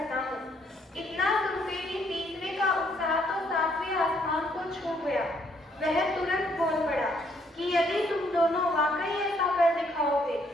हूँ। इतना सुनते ही तीसरे का उत्साह तो 7वें आसमान को छू गया। वह तुरंत बोल पड़ा कि यदि तुम दोनों वाकई ऐसा कर दिखाओगे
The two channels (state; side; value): normal; both; correlation 0.68